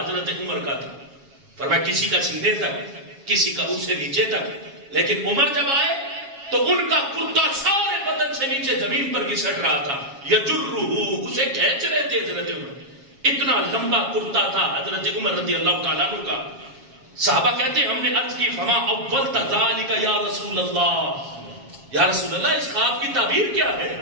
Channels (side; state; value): left; late; 7.3 ms